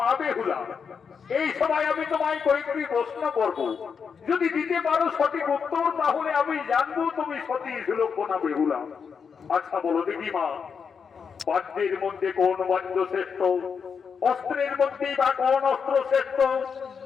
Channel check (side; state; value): right; quieter; 6.2 dB